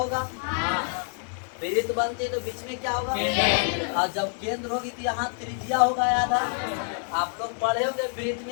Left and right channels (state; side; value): silent; right; 56 dB below the other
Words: वृत्त बनती है तो बीच में क्या होगा, और जब केंद्र होगी तो यहाँ त्रिज्या होगा। याद है आप लोग पढ़े होंगे, वृत्त